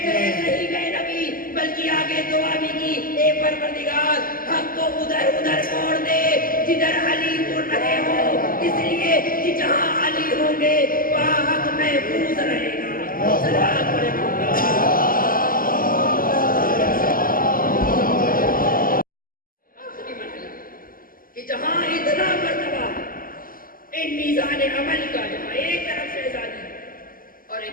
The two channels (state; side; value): late; right; 0.41 ms